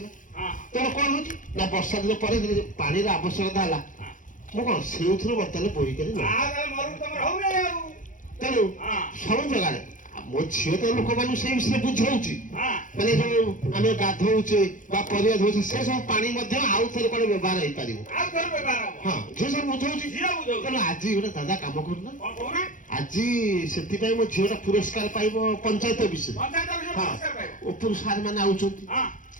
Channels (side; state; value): right; late; 0.38 ms